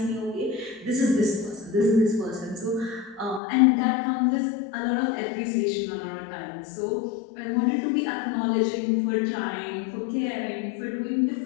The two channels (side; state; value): right; drops out; at 3.4 s